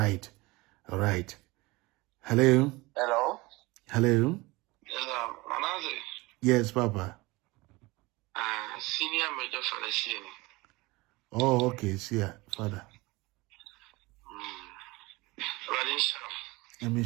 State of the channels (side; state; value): left; quieter; 22.5 dB